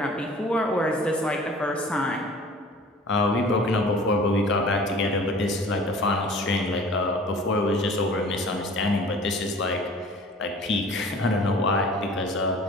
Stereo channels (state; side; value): normal; both; correlation 0.46